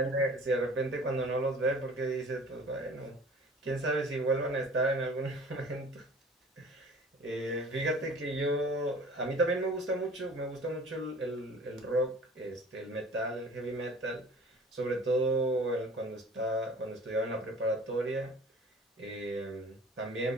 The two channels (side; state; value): both; normal; correlation 0.46